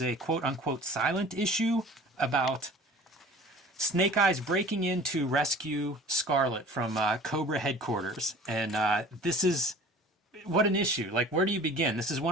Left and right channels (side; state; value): both; normal; correlation 0.45